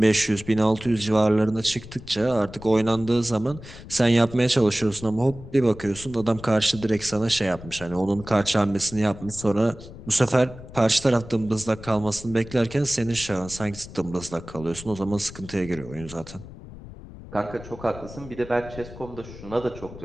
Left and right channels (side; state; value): left; noise; rumble, 15 dB below the sound